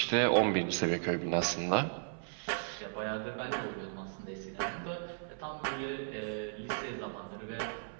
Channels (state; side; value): silent; left; 54 dB below the other